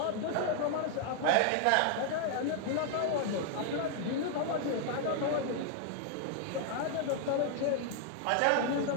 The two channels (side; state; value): both; different; correlation 0.00